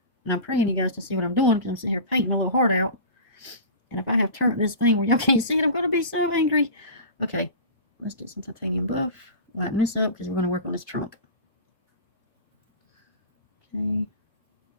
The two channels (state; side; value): inverted; both; correlation -0.33